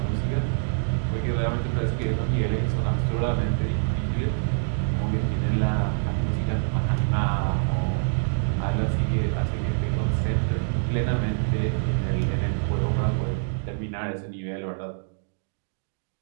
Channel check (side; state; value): left; silent; digital silence